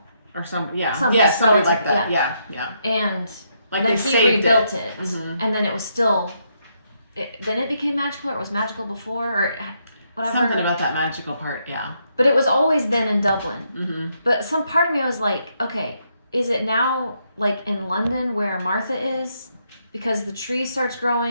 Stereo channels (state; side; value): inverted; both; correlation -0.77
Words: Or somebody relative, like that. Yeah. And then they he rebuilt it. Mm-hmm. And then it was still. Then it became magical, or it was magical before, or whatever. Something about that magical part, yeah. But it was always then in Dublin. Mm-hmm. But some part of me was like, okay, is it now in London where Martha is? Because the tree starts